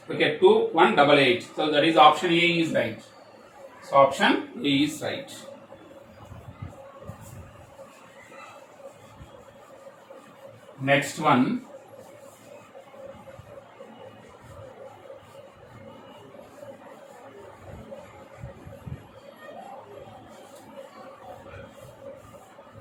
Okay, 2188. So that is option A is right. So option A is right. Next one.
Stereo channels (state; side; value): identical; both; correlation 1.00